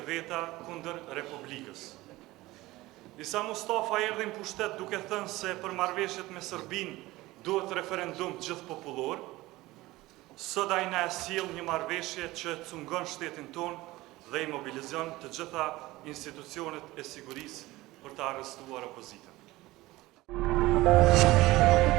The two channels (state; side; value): quieter; left; 18.8 dB